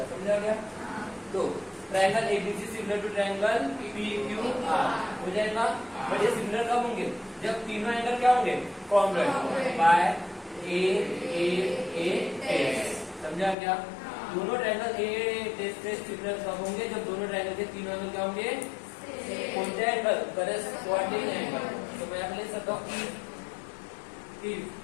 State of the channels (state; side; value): drops out; right; at 13.6 s